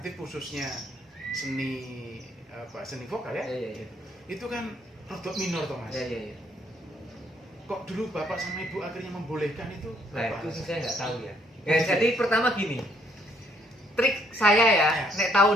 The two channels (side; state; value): both; normal; correlation 0.68